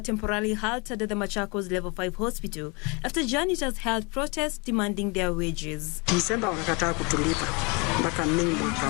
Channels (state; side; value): quieter; right; 30.2 dB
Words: halted at the Machakos Level 5 hospital after janitors held protests demanding their wages. Disemba wakakataa kutulipa mpaka Mei mwaka